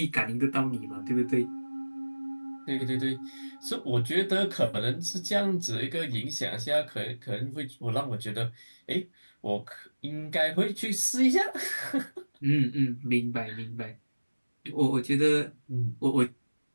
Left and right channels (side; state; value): both; inverted; correlation -1.00